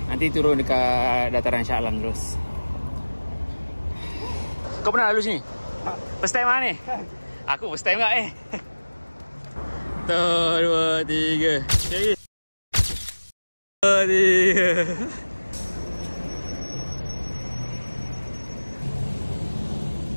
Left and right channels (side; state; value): both; inverted; correlation -1.00